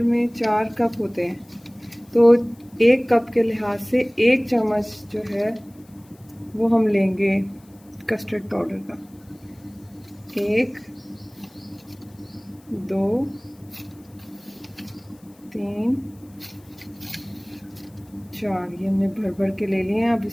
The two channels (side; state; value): left; noise; hiss, 30 dB below the sound